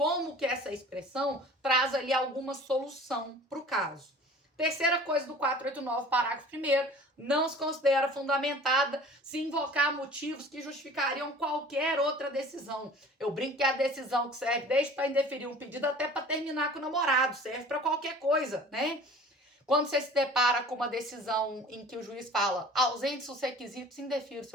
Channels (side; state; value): both; normal; correlation 0.45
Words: que essa expressão traz ali alguma solução para o caso. Terceira coisa do 489, parágrafo 1º, não se considera fundamentada se invocar motivos que justificariam qualquer outra decisão. Eu brinco que é a decisão que serve desde para indeferir um pedido até para terminar com o namorado, serve para qualquer coisa, né? Quando você se depara com uma decisão em que o juiz fala ausentes os requisitos, indefira o